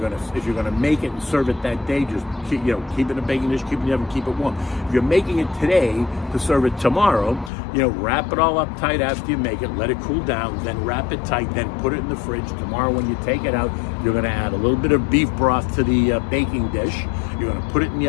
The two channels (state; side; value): drops out; right; at 7.5 s